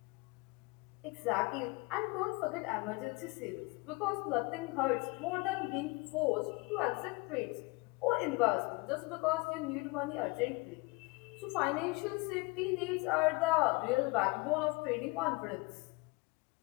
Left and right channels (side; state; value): right; quieter; 26.3 dB